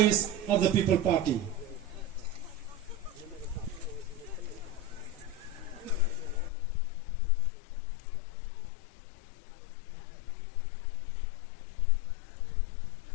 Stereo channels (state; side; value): drops out; right; at 6.5 s